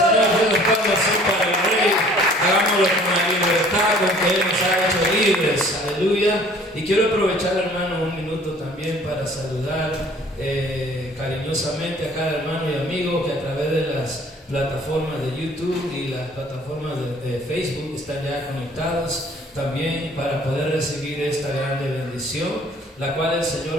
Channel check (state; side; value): normal; both; correlation 0.53